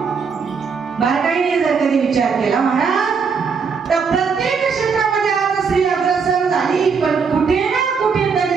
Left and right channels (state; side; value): quieter; left; 5.7 dB